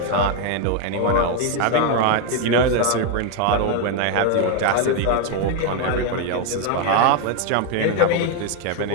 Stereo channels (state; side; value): different; both; correlation 0.01